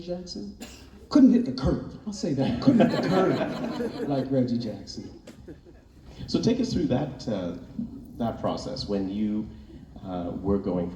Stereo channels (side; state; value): both; identical; correlation 1.00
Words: Jackson. Couldn't hit the curve. I'll say that. Couldn't hit the curve like Reggie Jackson. So take us through that process when you were going